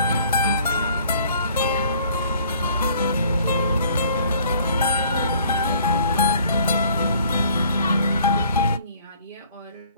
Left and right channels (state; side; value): inverted; both; correlation -0.56